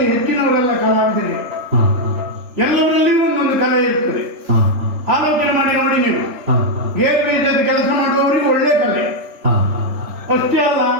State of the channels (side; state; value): left; late; 3.4 ms